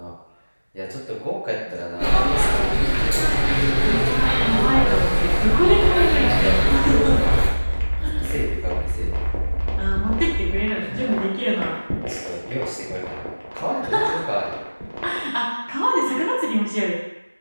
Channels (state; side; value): inverted; both; correlation -1.00